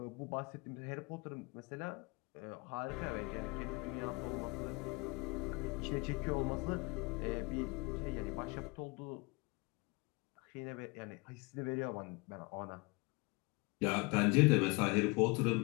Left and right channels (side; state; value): right; quieter; 27.7 dB